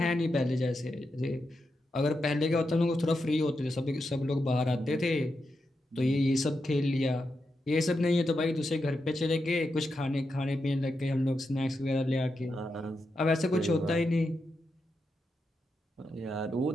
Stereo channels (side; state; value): both; normal; correlation 0.86